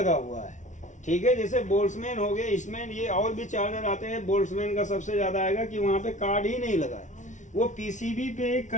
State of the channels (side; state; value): right; late; 0.36 ms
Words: हुआ है, ठीक है। जैसे बोल्ट्समैन हो गए, इसमें ये और भी चार्जर आते हैं, बोल्ट्समैन का सबसे ज्यादा आएगा कि वहाँ पे कार्ड ही नहीं लगा है, वो पीसीबी पे एक